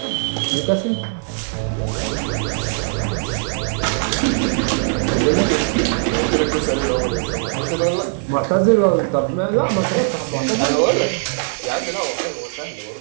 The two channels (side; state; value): left; silent; digital silence